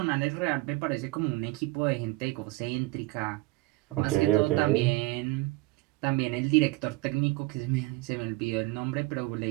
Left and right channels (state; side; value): quieter; left; 20.8 dB